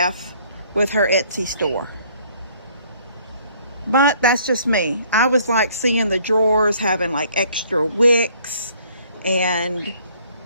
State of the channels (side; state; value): both; inverted; correlation -0.61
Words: with her Etsy store. But that's just me. I was like seeing the drawers having like extra wicks and